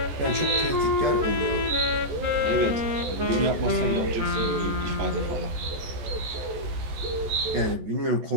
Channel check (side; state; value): left; late; 14 ms